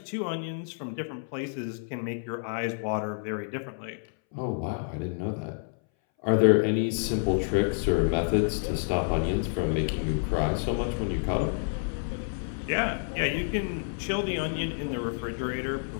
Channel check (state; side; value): silent; right; 59 dB below the other